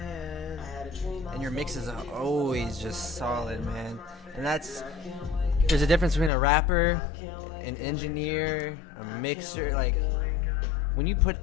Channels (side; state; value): right; drops out; at 6.3 s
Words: And your mixes are always just solid, man. And there's a difference between a rapper, an engineer, a mixer. Like, when you put